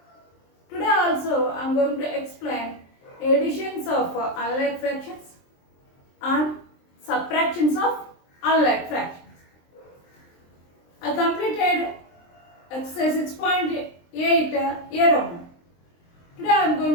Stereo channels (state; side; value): late; right; 23 ms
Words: Today also, I am going to explain additions of unlike fractions and subtractions of unlike fractions. I completed exercise 6.8 A Roman. Today I am